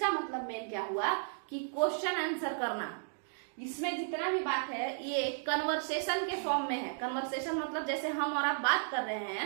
मतलब मेन क्या हुआ कि क्वेश्चन आंसर करना। इसमें जितना भी बात है ये कन्वर्सेशन के फॉर्म में है। कन्वर्सेशन मतलब जैसे हम और आप बात कर रहे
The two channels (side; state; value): left; silent; digital silence